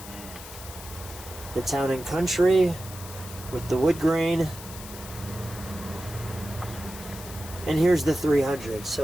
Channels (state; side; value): noise; left; hiss, 14 dB below the sound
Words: The Town and Country with the wood grain. And here's the 300,